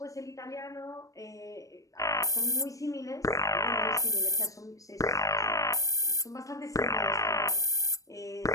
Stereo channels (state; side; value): late; right; 0.16 ms